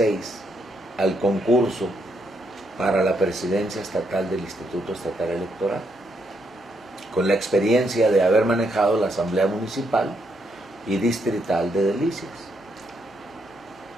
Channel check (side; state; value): both; normal; correlation 0.76